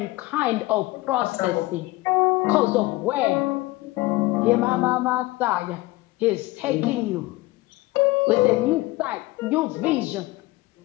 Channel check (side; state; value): right; quieter; 19.9 dB